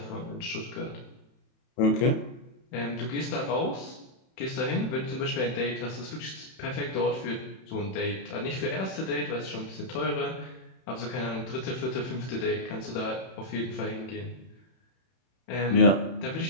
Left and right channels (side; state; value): right; late; 31 ms